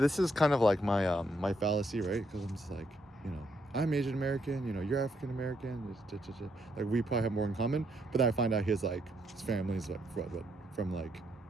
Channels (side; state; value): both; normal; correlation 0.75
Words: is kind of like my my fallacy, right? Because I'm just like, I'm Asian American, you're African American, like we probably have more in common. But then I find out his family is like from like